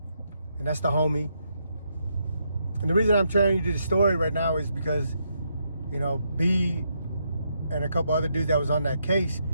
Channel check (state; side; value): inverted; both; correlation -0.78